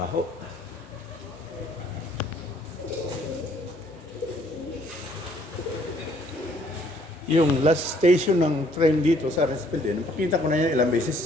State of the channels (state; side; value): normal; both; correlation 0.63